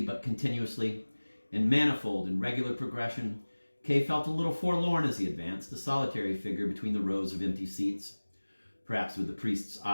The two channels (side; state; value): both; inverted; correlation -1.00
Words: but continuously, in manifold and regular progression. Kay felt a little forlorn as he advanced, a solitary figure between the rows of empty seats, perhaps with the priest's